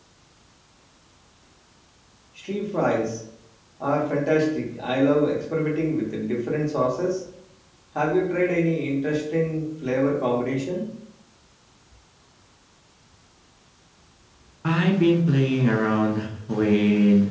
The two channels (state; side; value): identical; both; correlation 1.00